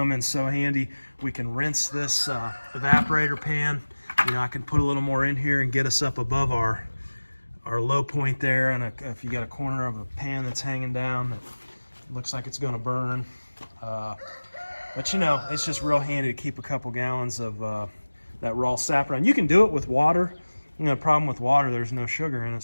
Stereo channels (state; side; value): inverted; both; correlation -1.00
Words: in so handy. We can rinse this evaporator pan. You know, I can put a little more in here and get us up above our low point there. And if you got a corner of a pan that's hanging down that looks like it's gonna burn. But you know, it's just real handy to keep a couple gallons of that raw sap around. You can do it with water. You know, the problem with water, there's no sugar in it,